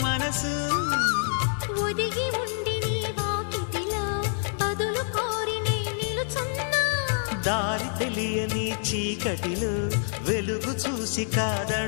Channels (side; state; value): right; silent; digital silence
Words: మనసు ఒదిగి ఉండి నీ వాకిటిలో బదులు కోరి నే నిలుచున్నా దారి తెలియని చీకటిలో వెలుగు చూసి